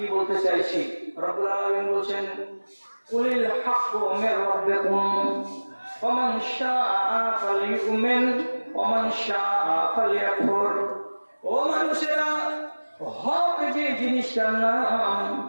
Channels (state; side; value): inverted; both; correlation -1.00